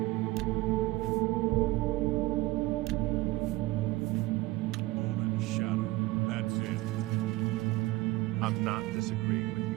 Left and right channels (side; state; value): left; quieter; 19.5 dB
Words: Moon and shadow. That's it. I'm not disagreeing with